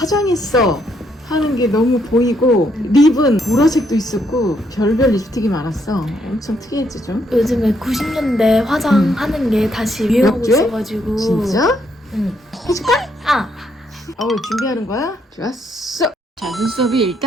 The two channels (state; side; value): normal; both; correlation 0.74